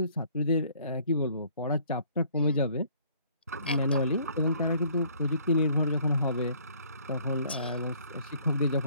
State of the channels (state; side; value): inverted; both; correlation -0.60